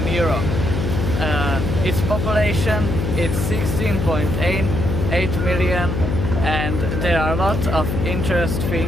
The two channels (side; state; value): left; noise; hum, 1 dB below the sound